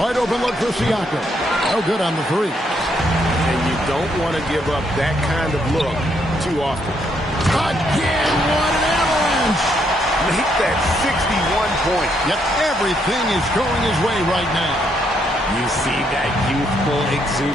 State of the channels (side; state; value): both; normal; correlation 0.74